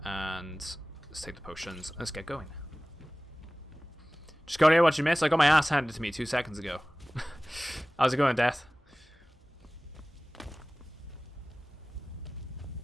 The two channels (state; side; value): normal; both; correlation 0.98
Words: And let's take the potions. Let's get going. Just go here, what you missed. I got my ass handed to me 2 seconds ago. How's it going, Death?